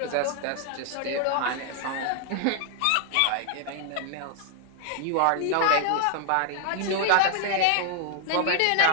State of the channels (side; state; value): both; different; correlation 0.00